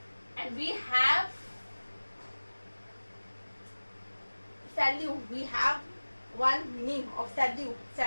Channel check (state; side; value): inverted; both; correlation -1.00